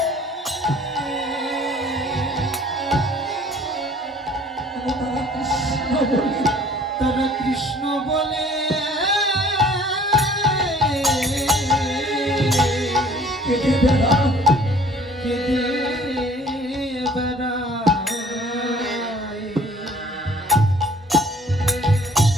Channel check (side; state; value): both; normal; correlation 0.53